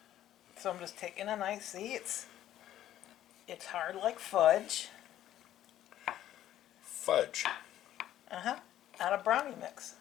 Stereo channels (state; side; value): quieter; right; 12.4 dB